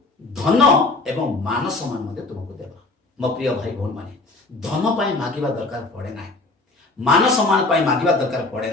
धन एवं मान सम्मान मते तुमको देबा। मो प्रिय भाई भौण माने धन पाई मागिबा दरकार पड़े नाही मान सम्मान पाई मागिबा दरकार पड़े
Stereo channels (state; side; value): quieter; right; 3.3 dB